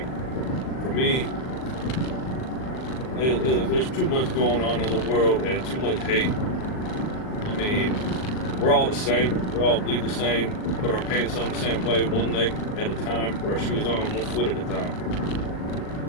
for me, there's too much going on in the world and too much hate. I mean, we're all the same. We all bleed the same. Put our pants on the same way, one leg at a time. Put our shoes on one foot at a time.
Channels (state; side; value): late; right; 38 ms